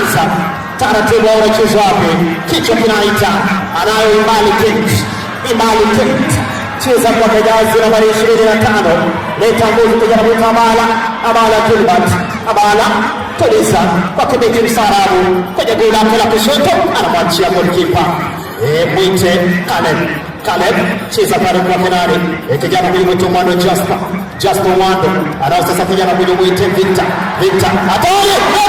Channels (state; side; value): identical; both; correlation 1.00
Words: taratibu, wanacheza wapi, kichwa kinaita, anayo Imbali Kate, cheza kwa jazi nambari 25, leta nguvu kijana mwita Abala Gilbert, Abala tuliza kwa kibeki msarabu kwenye goli lake la kushoto, anamwachia goalkeeper mwite Caleb, cheza pale kwa penali, kijana mwito Mwando Jasper Mwando, anao sasa kijana mwite Victor, hatari,